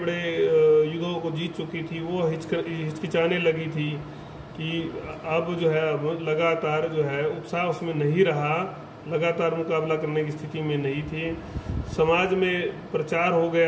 युद्धों को जीत चुकी थी, वो हिचकिचाने लगी थी कि अब जो है अब लगातार जो है उत्साह उसमें नहीं रहा, लगातार मुकाबला करने की स्थिति में नहीं थी। समाज में प्रचार हो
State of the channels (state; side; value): identical; both; correlation 1.00